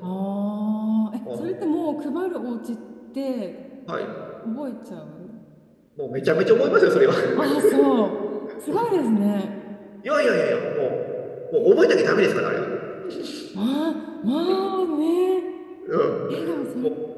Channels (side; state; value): both; identical; correlation 1.00